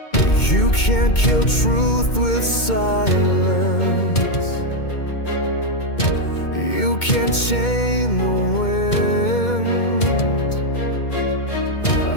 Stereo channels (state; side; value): late; right; 2.2 ms